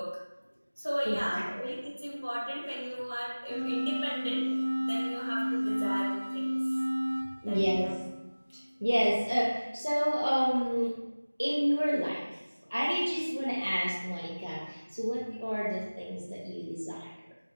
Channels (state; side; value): inverted; both; correlation -1.00